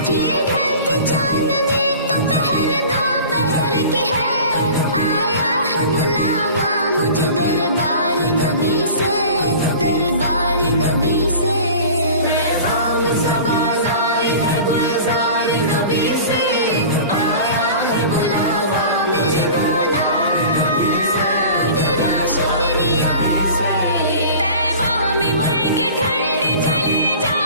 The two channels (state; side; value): inverted; both; correlation -0.40